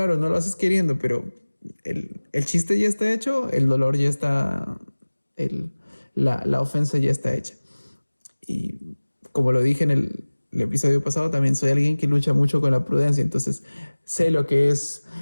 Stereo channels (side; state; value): both; inverted; correlation -1.00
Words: no lo haces queriendo, pero el chiste ya está hecho, el dolor ya está, la ofensa ya está hecha. Y como lo dije en el episodio pasado, también soy alguien que lucha mucho con la prudencia, entonces sé lo que es